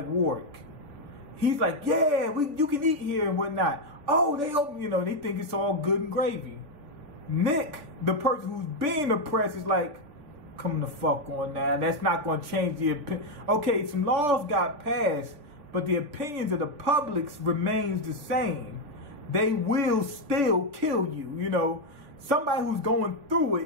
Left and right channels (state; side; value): late; left; 3.4 ms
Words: Warwick. He's like, "Yeah, you can eat here and whatnot." Oh, they open, they think it's all good and gravy. Nick, the person who's being oppressed, is like, "Come the fuck on now. That's not going to change the opinion." Okay, some laws got passed, but the opinions of the public remains the same. They will still kill you, Somebody who's going through